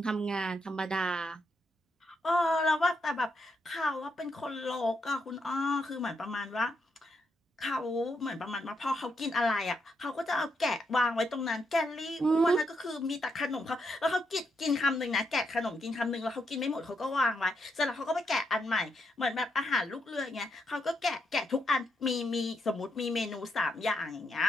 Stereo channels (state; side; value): normal; both; correlation 0.80